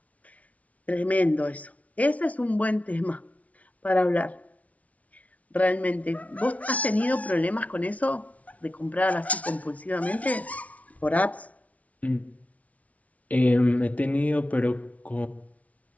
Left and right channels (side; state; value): right; late; 0.068 ms